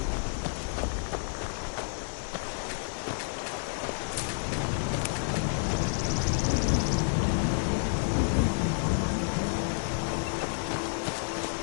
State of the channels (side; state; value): right; silent; 58 dB below the other